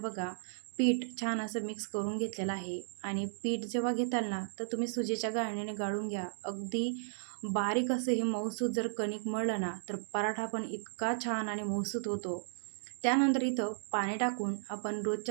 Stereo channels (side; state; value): left; silent; digital silence